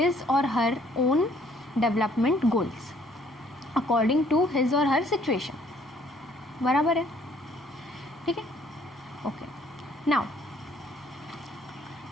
or her own development goals according to his or her situation, बराबर है। ठीक है, ओके। नाउ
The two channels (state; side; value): normal; both; correlation 0.62